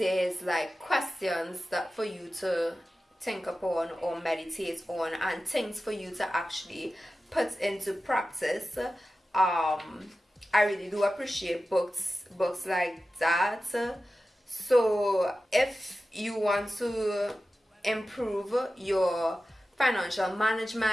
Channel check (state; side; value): normal; both; correlation 0.94